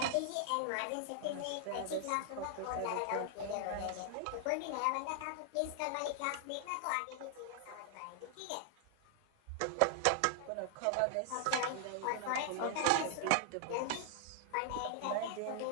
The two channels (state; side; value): different; both; correlation 0.00